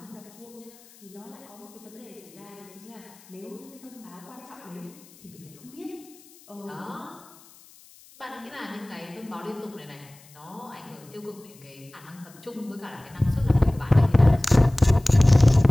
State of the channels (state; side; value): noise; left; hiss, 25 dB below the sound